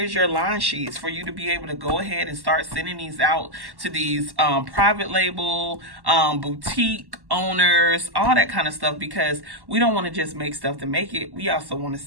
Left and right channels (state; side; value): late; left; 1.1 ms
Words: your line sheets for you to be able to go ahead and start sending these out to these private label, boutique owners, all that kind of stuff, because we don't want to just make stuff to make it. We also want to